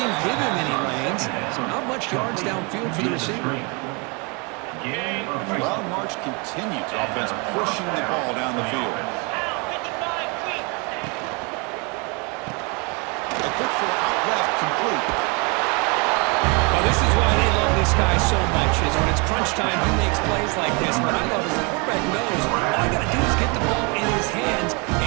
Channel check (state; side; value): quieter; left; 31.3 dB